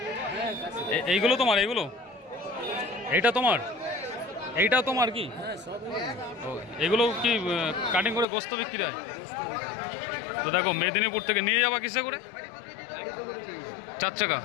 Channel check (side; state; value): right; drops out; at 8.2 s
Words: এইগুলো তোমার? এইগুলো এইটা তোমার? এইটাও তোমার কি? এগুলো কি কাটিং করে গোস্ত বিক্রি হয়? তো দেখো মেদিনীপুর থেকে নিয়ে যাবা কিসে করে? 4 চাকা,